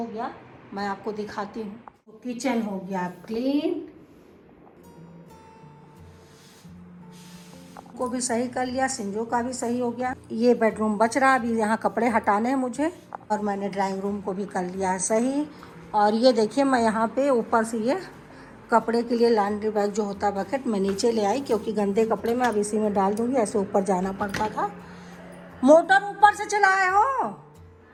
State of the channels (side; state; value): both; identical; correlation 1.00